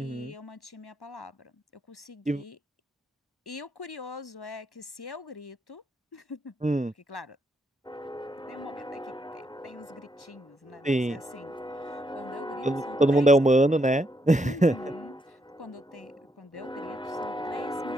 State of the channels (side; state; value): both; normal; correlation 0.77